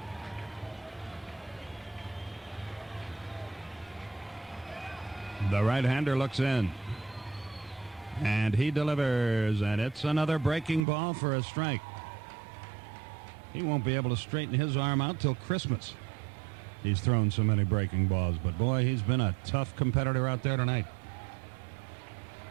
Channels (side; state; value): left; drops out; at 10.9 s